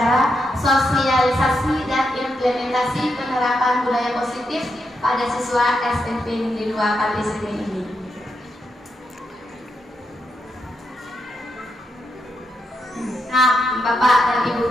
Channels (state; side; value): normal; both; correlation 0.83